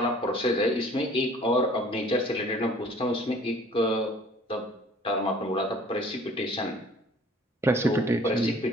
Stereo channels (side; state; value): both; normal; correlation 0.52